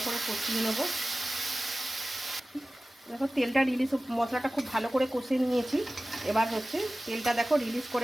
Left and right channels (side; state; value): both; normal; correlation 0.96